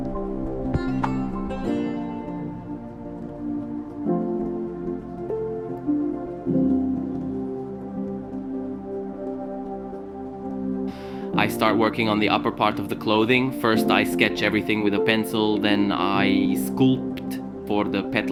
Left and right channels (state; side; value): identical; both; correlation 1.00